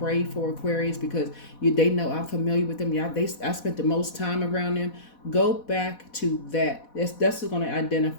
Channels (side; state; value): right; late; 4.1 ms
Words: for Aquarius because they know I'm familiar with them. Yeah, I spent the most time around them. Go back to that. That's going to